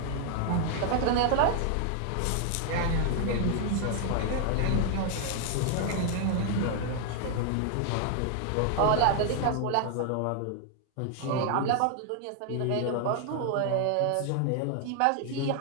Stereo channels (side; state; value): both; different; correlation 0.00